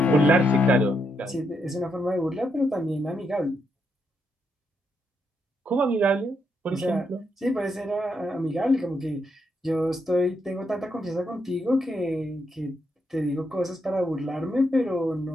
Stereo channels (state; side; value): normal; both; correlation 0.79